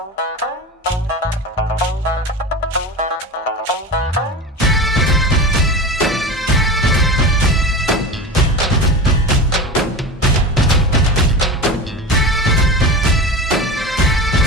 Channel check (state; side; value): normal; both; correlation 0.28